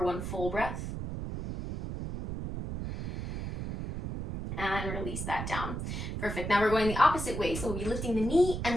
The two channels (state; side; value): noise; right; rumble, 5 dB below the sound